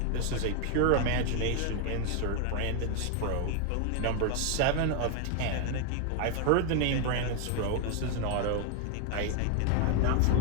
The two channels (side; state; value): both; different; correlation 0.01